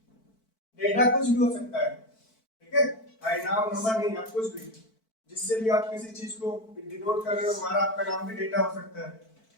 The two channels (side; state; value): right; late; 4.5 ms